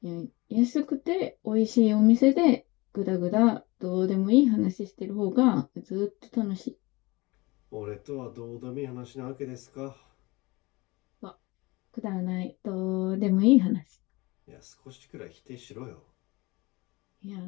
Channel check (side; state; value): right; quieter; 23.2 dB